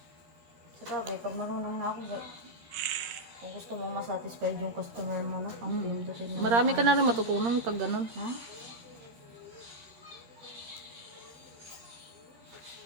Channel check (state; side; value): late; left; 13 ms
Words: Sa bagay, pag marunong na ako, kung gusto mong masatisfied yung customer mo, no? Ang pindutin mo. Marami ka na rin matutunan pag ganun. Ha?